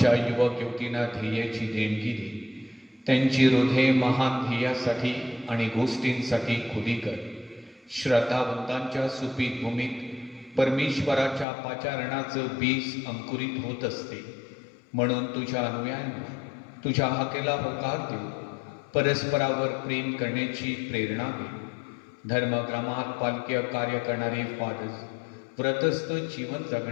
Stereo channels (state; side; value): drops out; right; at 11.5 s